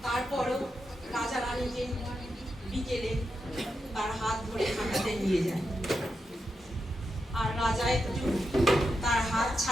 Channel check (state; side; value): normal; both; correlation 0.86